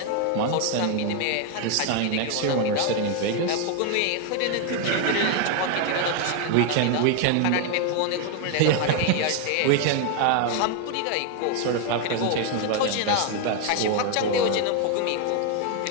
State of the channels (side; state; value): both; different; correlation 0.01